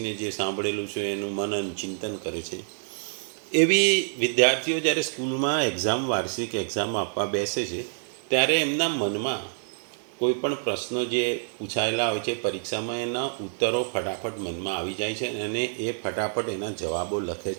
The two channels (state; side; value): silent; left; 60 dB below the other